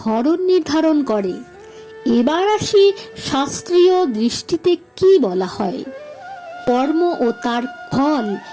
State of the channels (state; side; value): identical; both; correlation 1.00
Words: নির্ধারণ করে। এবার আসি শাস্ত্রীয় দৃষ্টিতে কি বলা হয়। কর্ম ও তার ফল